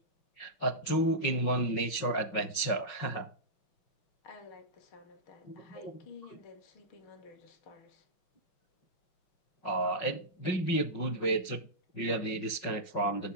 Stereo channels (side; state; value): right; late; 5.5 ms